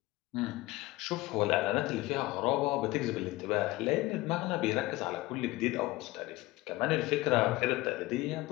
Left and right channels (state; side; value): quieter; right; 19.2 dB